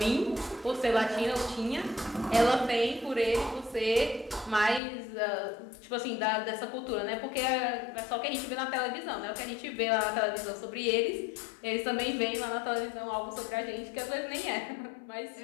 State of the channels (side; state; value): right; drops out; at 4.8 s